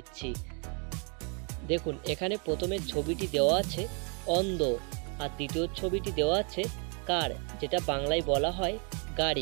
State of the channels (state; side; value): quieter; left; 36.9 dB